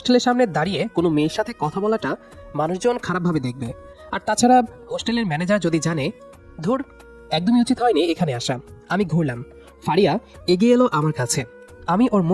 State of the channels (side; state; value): both; identical; correlation 1.00